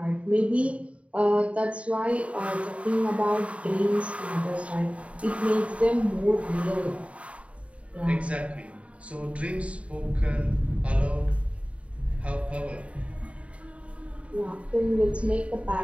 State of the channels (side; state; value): left; late; 0.064 ms